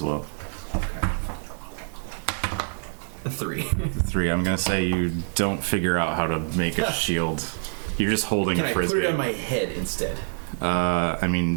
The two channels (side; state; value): left; silent; digital silence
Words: well. Okay. A 3. 3. I'm gonna say you don't figure out how to make a shield. You're just holding Can a I frisbee. put it on my head instead? I